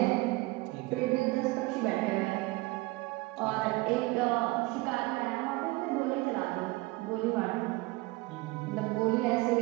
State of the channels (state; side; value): quieter; left; 22.4 dB